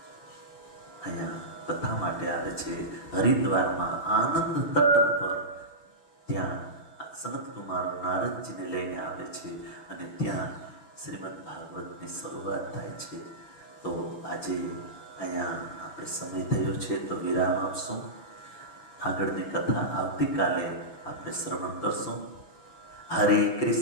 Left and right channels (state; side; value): late; right; 6.0 ms